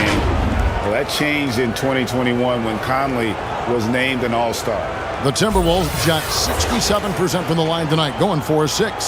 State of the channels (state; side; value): identical; both; correlation 1.00